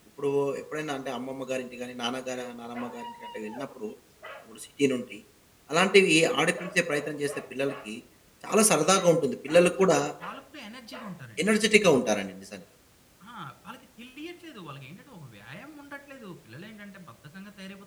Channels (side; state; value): both; identical; correlation 1.00